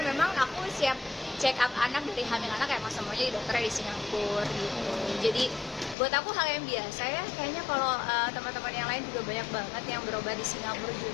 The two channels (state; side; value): drops out; right; at 6.0 s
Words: memang aku siap check up anak dari hamil anak emang semuanya di dokternya di Singapura gitu. Jadi buat aku hal yang biasa ya, kayaknya kalau teman-teman yang lain juga banyak banget yang berobat di Singapura